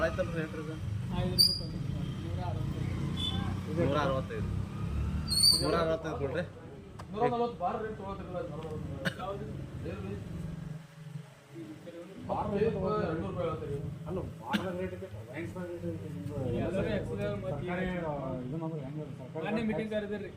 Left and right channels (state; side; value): identical; both; correlation 1.00